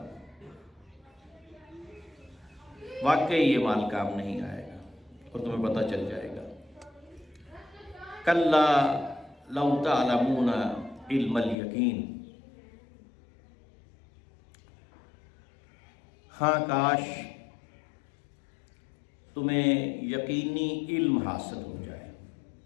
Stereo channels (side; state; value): right; drops out; at 11.6 s